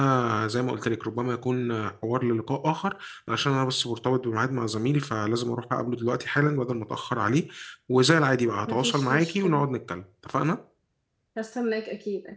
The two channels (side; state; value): both; identical; correlation 1.00